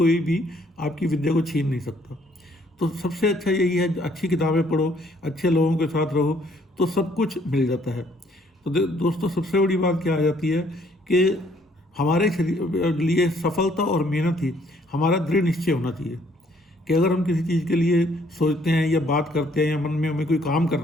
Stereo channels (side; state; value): both; normal; correlation 0.64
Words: भी आपकी विद्या को छीन नहीं सकता। तो सबसे अच्छा यही है, अच्छी किताबें पढ़ो, अच्छे लोगों के साथ रहो, तो सब कुछ मिल जाता है। तो दोस्तों, सबसे बड़ी बात क्या आ जाती है कि हमारे लिए सफलता और मेहनत ही हमारा दृढ़ निश्चय होना चाहिए। कि अगर हम किसी चीज़ के लिए सोचते हैं या बात करते हैं या मन में हमें कोई काम